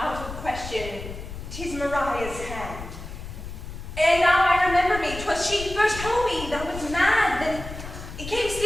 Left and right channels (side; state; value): left; noise; rumble, 10 dB below the sound